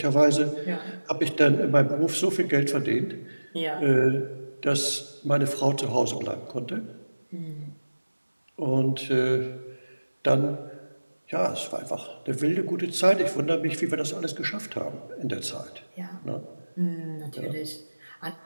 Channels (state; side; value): inverted; both; correlation -1.00